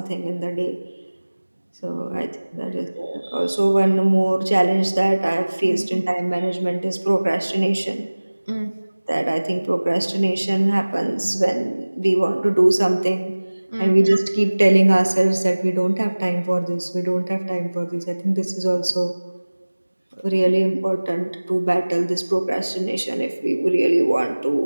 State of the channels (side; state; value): both; inverted; correlation -1.00